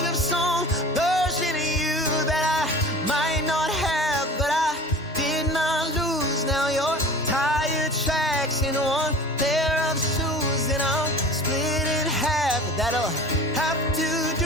of some version of you that I might not have, but I did not lose. Now your tire tracks in one pair of shoes, and I'm split in half. That'll have to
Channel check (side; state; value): both; normal; correlation 0.40